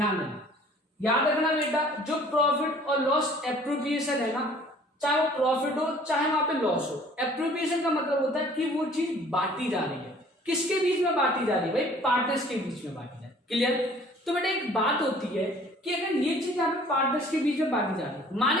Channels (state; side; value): normal; both; correlation 0.53